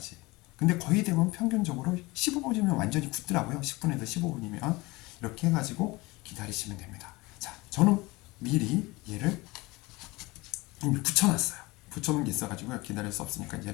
근데 거의 대부분 평균적으로 15분이면 완전히 굳더라고요. 10분에서 15분이면. 이렇게 해가지고 기다리시면 됩니다. 자, 저는 미리 얘를 이미 붙여놨어요. 붙여놓은 게 있어가지고 기다릴 수 없으니까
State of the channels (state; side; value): quieter; right; 22.5 dB